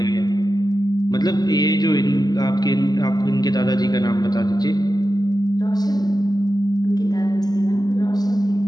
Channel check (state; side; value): late; right; 0.19 ms